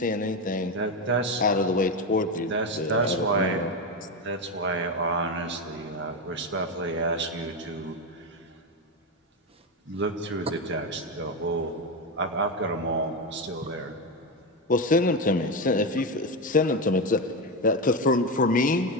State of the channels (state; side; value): normal; both; correlation 0.13